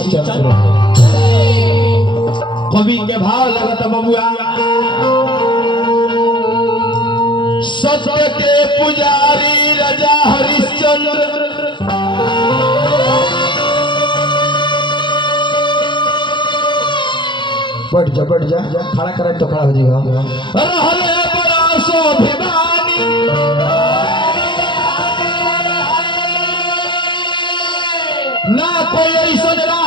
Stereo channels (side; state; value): right; late; 0.23 ms